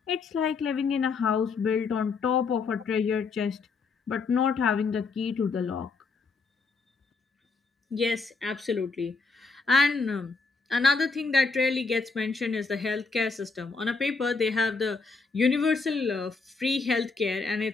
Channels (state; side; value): quieter; right; 4.5 dB